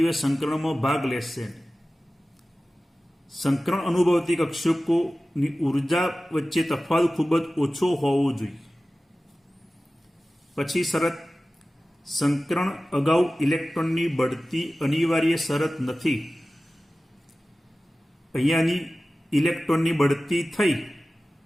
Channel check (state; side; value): normal; both; correlation 0.96